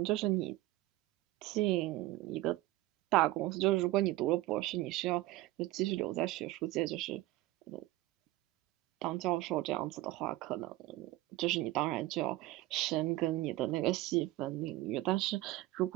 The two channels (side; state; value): left; quieter; 17.6 dB